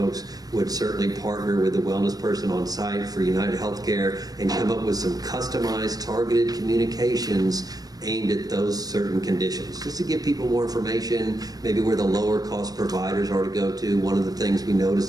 would certainly partner with the wellness person on site for United Healthcare and come up with some customized, targeted communications aimed at those certain conditions, just to give people more information, maybe where the lower cost providers are to go to. One of the things we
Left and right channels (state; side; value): late; left; 0.18 ms